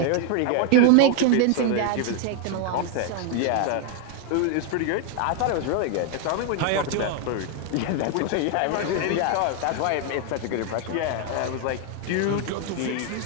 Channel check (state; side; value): different; both; correlation 0.00